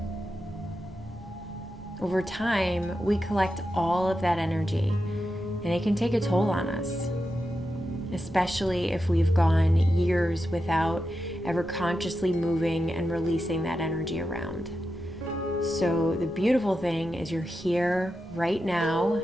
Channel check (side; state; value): both; normal; correlation 0.89